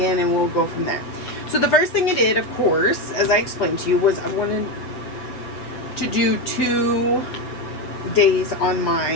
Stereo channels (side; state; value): right; late; 7.4 ms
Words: and we'll go from there. So the first thing I did, of course, as I explained to you, was I wanted to do 2 days on